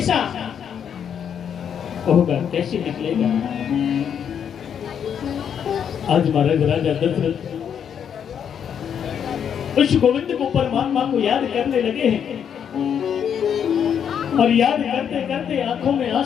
होगा, कैसे निकलेगा। आज महाराज राजा दशरथ उस गोविंद को परमात्मा को याद करने लगे हैं और याद करते करते आंखों में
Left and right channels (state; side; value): quieter; right; 8.2 dB